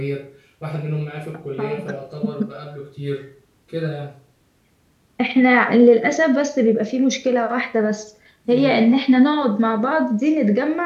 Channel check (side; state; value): both; identical; correlation 1.00